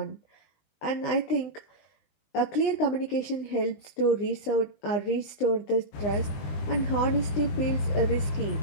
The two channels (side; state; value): right; late; 20 ms